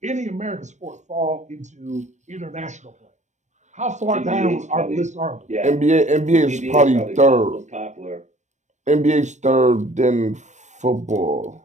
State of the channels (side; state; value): left; late; 0.34 ms